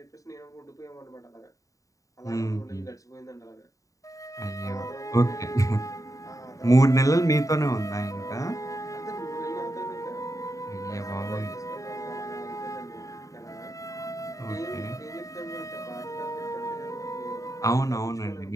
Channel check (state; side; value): late; right; 0.16 ms